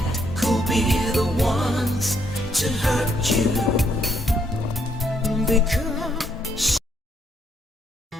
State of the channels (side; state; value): both; normal; correlation 0.72